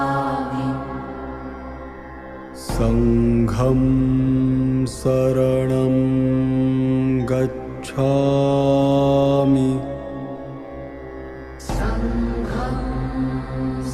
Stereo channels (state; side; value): identical; both; correlation 1.00